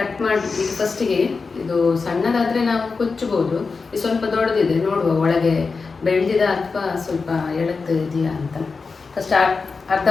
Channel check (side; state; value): right; quieter; 4.6 dB